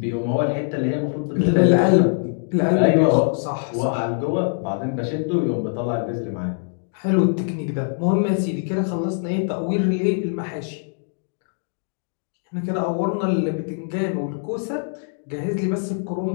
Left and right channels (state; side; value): silent; right; digital silence